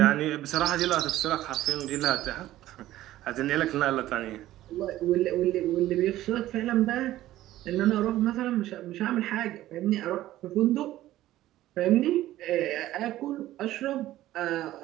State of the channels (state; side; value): quieter; left; 14.7 dB